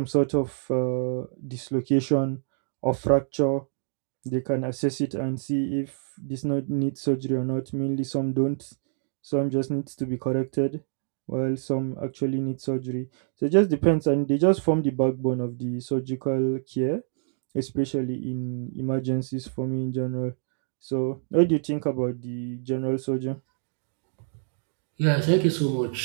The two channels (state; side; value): silent; left; digital silence